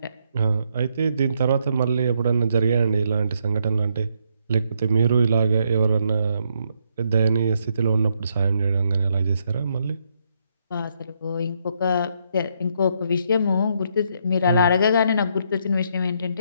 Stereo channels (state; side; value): inverted; both; correlation -0.75